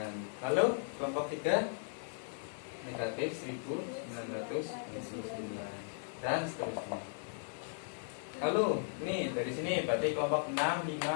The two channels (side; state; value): right; silent; digital silence